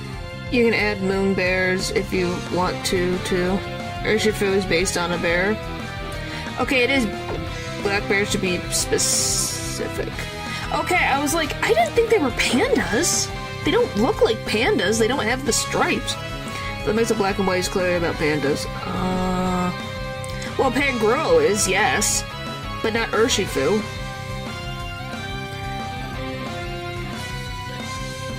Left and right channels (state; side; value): identical; both; correlation 1.00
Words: You can add moon bears if you want to, too. Urshifu is based on a bear. Okay, it is black bears to be specific. Okay, I was like, I didn't think they were pandas. They don't look like pandas. They don't have the stripes. That makes the black and white is clearly about pandas. Well, Pangoro is, yes. But not Urshifu.